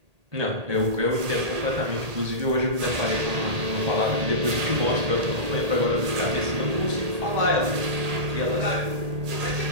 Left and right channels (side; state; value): left; late; 1.8 ms